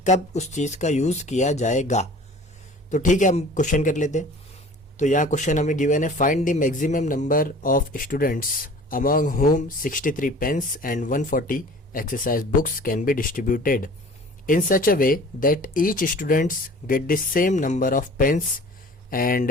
कब उस चीज़ का यूज़ किया जाएगा। तो ठीक है, हम क्वेश्चन कर लेते हैं। तो यहाँ क्वेश्चन हमें गिवन है, find the maximum number of students among whom 63 pens and 140 exercise books can be distributed in such a way that each students get the same number of pens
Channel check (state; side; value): normal; both; correlation 0.45